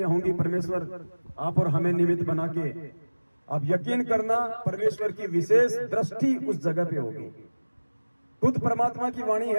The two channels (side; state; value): both; inverted; correlation -1.00